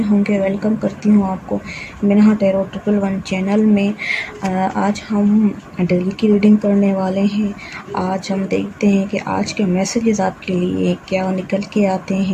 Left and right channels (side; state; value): both; identical; correlation 1.00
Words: होंगे। वेलकम करती हूँ आपको मिनहा टैरो 111 चैनल में। आज हम डेली की रीडिंग करने वाले हैं। आज हम देखते हैं कि आज के मैसेजेस आपके लिए क्या निकल के आते